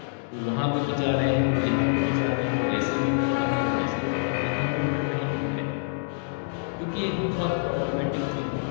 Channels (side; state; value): right; silent; digital silence